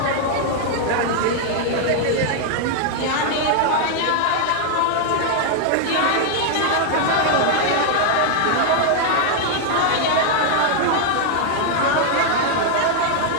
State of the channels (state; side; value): different; both; correlation 0.00